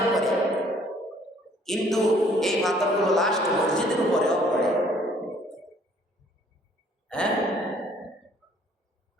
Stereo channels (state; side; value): normal; both; correlation 0.60